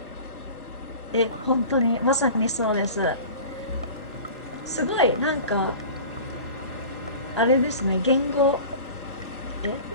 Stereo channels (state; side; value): inverted; both; correlation -0.38